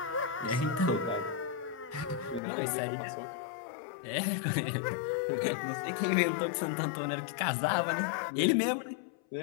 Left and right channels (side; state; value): right; drops out; at 2.4 s